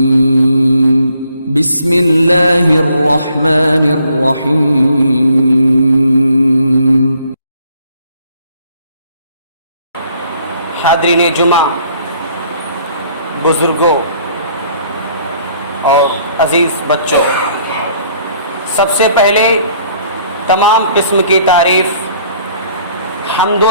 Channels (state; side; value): inverted; both; correlation -0.63